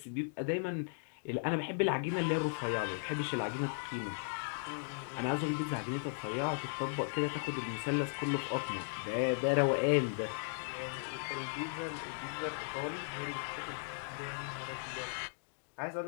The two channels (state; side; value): silent; right; digital silence